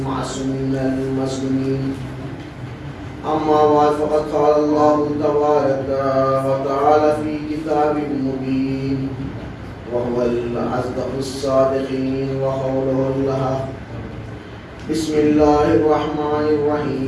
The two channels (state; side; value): identical; both; correlation 1.00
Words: المسلمين. أما بعد فقد قال الله تبارك وتعالى في كتاب مبين وهو الأصدق الصادقين وقوله الحق. بسم الله الرحمن